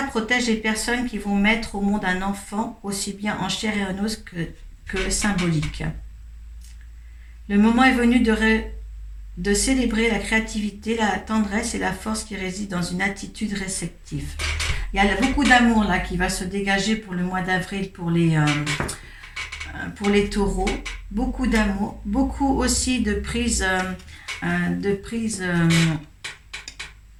protège les personnes qui vont mettre au monde un enfant, aussi bien en chair et en os que symbolique. Le moment est venu de célébrer la créativité, la tendresse et la force qui réside dans une attitude réceptive. Il y a beaucoup d'amour là qui va se dégager pour le mois d'avril pour les taureaux. Beaucoup d'amour, beaucoup aussi de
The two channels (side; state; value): both; identical; correlation 1.00